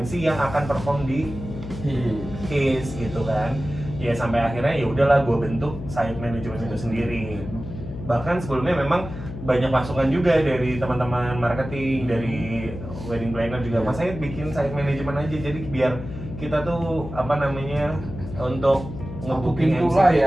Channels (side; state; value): left; noise; hum, 10 dB below the sound